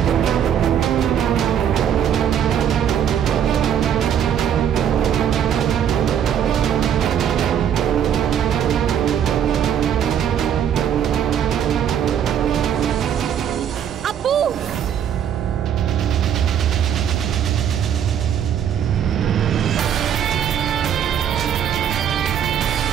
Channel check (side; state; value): left; quieter; 9.1 dB